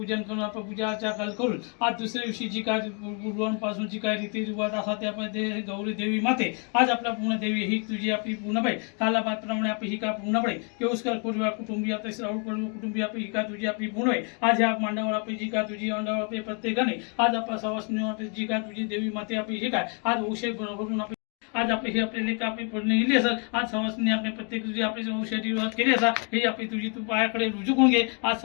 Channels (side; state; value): right; quieter; 38.8 dB